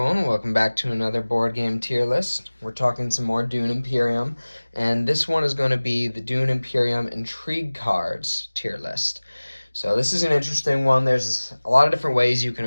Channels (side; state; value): both; inverted; correlation -1.00